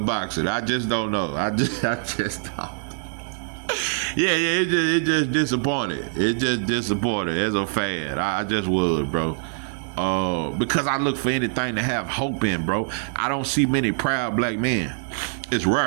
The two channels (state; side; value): silent; left; digital silence